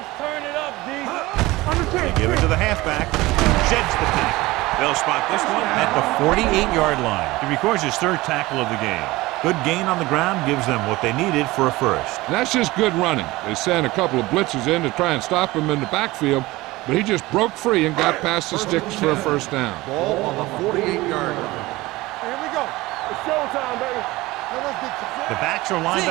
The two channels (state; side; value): quieter; left; 19.7 dB